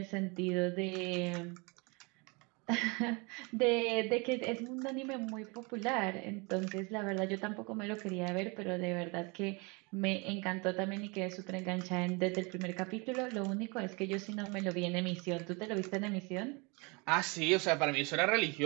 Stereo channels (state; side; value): quieter; left; 29.3 dB